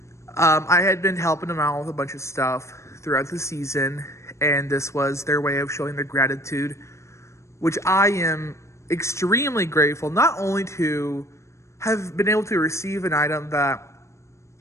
I had been helping them out with a bunch of stuff throughout the season, and this was their way of showing their gratitude, which I am extremely grateful, not only to have been able to receive an item that,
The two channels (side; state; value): right; late; 0.14 ms